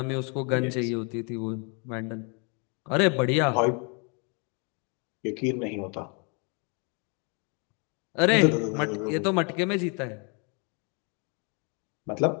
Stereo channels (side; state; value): right; quieter; 35.0 dB